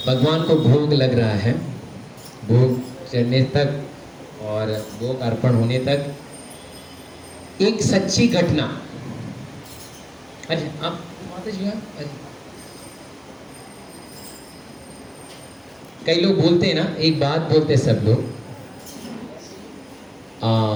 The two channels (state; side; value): identical; both; correlation 1.00